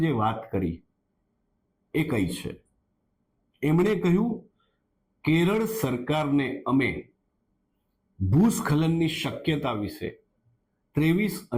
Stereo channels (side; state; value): both; identical; correlation 1.00